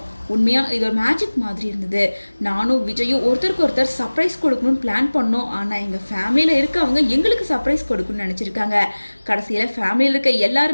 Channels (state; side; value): inverted; both; correlation -1.00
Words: உண்மையா இது ஒரு மேஜிக் மாதிரி இருந்தது. நானும் விஜயும் ஒருத்தருக்கு ஒருத்தர் சர்ப்ரைஸ் கொடுக்கணும்னு பிளான் பண்ணோம். ஆனா எங்க ஃபேமிலியில இருக்கவங்க எங்களுக்கு சர்ப்ரைஸ் கொடுக்கணும்னு நினைச்சிருக்காங்க. கடைசியில ஃபேமிலியில் இருக்க